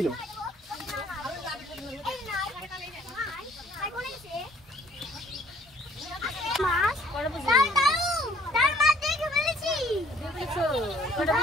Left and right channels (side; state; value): both; normal; correlation 0.59